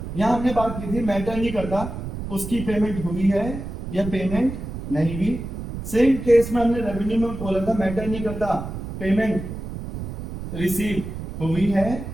यहां हमने बात की थी, मैटर नहीं करता उसकी पेमेंट हुई है या पेमेंट नहीं हुई। सेम केस में हमने रेवेन्यू में बोला था, मैटर नहीं करता पेमेंट रिसीव हुई है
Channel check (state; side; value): noise; right; rumble, 8 dB below the sound